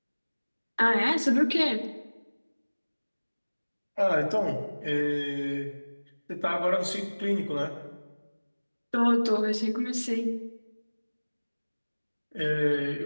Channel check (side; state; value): both; inverted; correlation -1.00